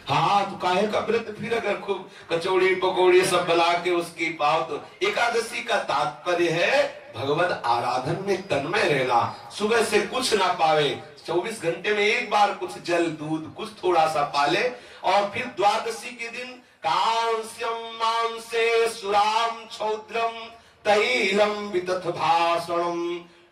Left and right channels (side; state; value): both; identical; correlation 1.00